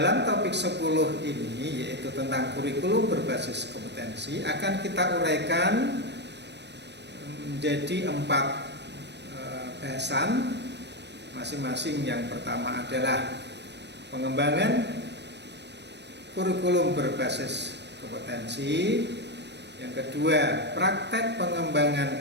topik 10 ini, yaitu tentang kurikulum berbasis kompetensi, akan kita uraikan menjadi 4 bahasan. Masing-masing. Yang pertama adalah pengembangan kurikulum berbasis kompetensi. Yang kedua, praktek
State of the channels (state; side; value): late; left; 0.50 ms